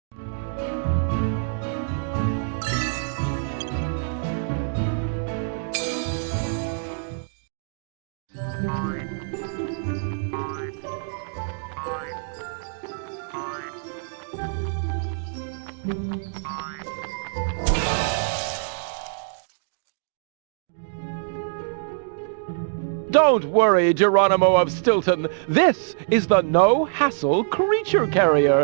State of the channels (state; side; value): silent; left; digital silence